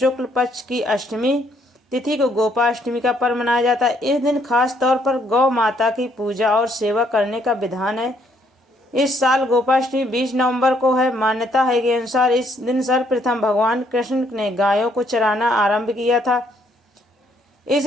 पक्ष की अष्टमी तिथि को गोपाष्टमी का पर्व मनाया जाता है। इस दिन खास तौर पर गौ माता की पूजा और सेवा करने का विधान है। इस साल गोपाष्टमी 20 नवंबर को है। मान्यता है के अनुसार इस दिन सर्वप्रथम भगवान कृष्ण ने गायों को चराना आरंभ किया था,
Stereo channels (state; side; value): normal; both; correlation 0.69